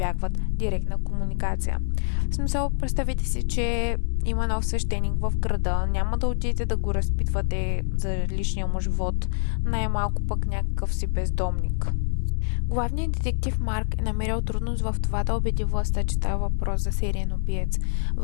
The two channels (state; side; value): silent; right; digital silence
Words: директна комуникация. В смисъл, представете си, че има нов свещеник в града, няма да отидете да го разпитвате за личния му живот, най-малко пък някакъв си бездомник. Главният детектив Марк е намерил трудност в това да убеди властта, че става въпрос за сериен убиец,